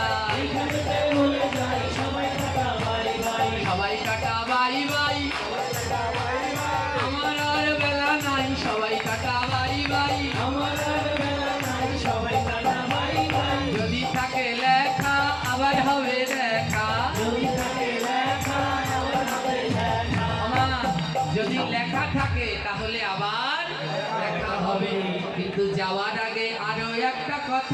সবাই কাটা বাই বাই। আমার আর বেলা নাই, সবাই কাটা বাই বাই। যদি থাকে লেখা আবার হবে দেখা। যাওয়ার আগে আরো একটা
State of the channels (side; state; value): both; identical; correlation 1.00